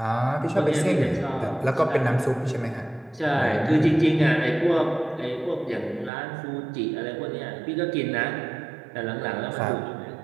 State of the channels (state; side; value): drops out; left; at 6.1 s